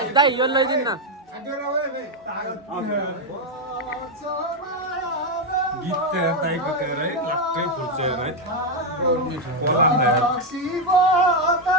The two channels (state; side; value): normal; both; correlation 0.03